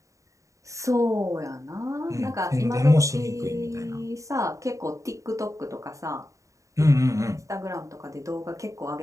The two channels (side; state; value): left; late; 0.16 ms